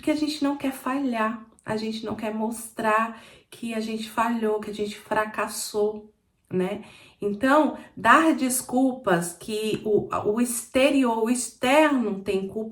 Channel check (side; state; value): both; identical; correlation 1.00